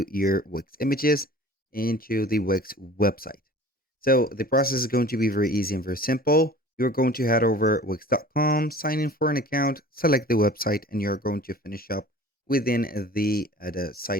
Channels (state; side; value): normal; both; correlation 0.44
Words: your Wix images into the Wix website. So the process is going to be very easy and very simple. You're going to head over wix.com, sign in for an account, select the website, and you're going to finish up within the